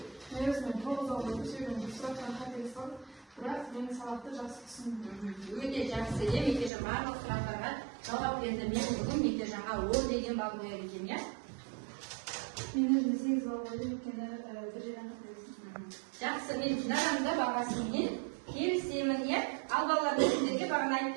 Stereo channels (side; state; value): left; drops out; at 6.7 s